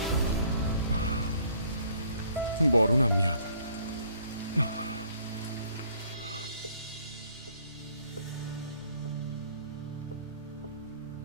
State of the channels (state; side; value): inverted; both; correlation -0.60